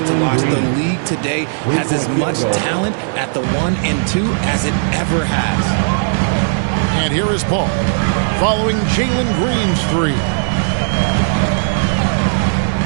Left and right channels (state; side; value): silent; left; digital silence